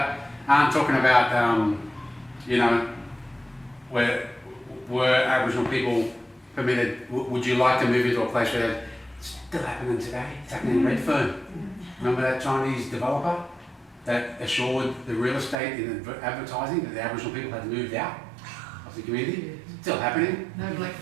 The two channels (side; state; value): left; drops out; at 15.6 s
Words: talking about, were Aboriginal people permitted, would you like to move into a place where it's still happening today? It's happening in Redfern. Remember that Chinese developer that assured the real estate in advertising that the Aboriginal people had moved out of the community? Still happening. No black